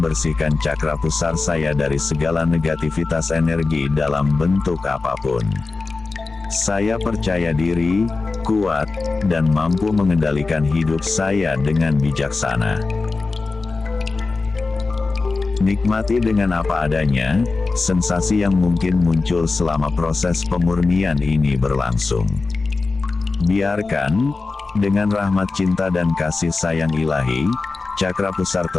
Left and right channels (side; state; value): right; quieter; 3.8 dB